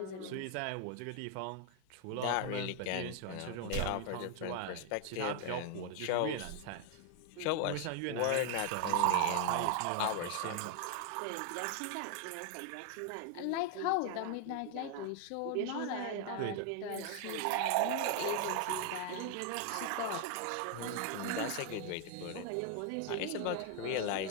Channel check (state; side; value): different; both; correlation 0.00